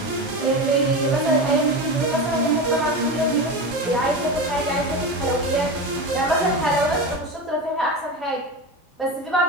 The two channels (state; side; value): normal; both; correlation 0.23